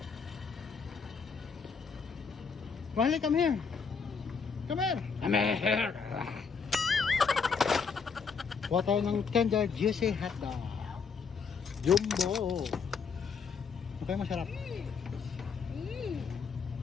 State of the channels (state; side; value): quieter; right; 5.6 dB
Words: Riley, come here. Come here. Come here. Kuha tayo ng tender juicy hotdog. Jumbo. Okay, masarap.